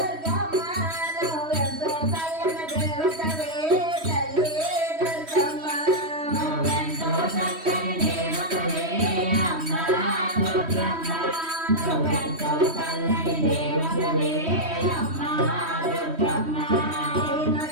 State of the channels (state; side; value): late; left; 3.1 ms